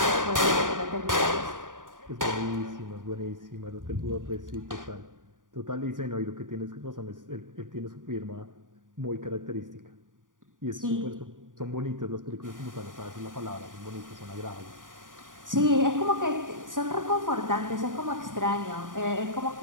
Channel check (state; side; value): late; left; 0.89 ms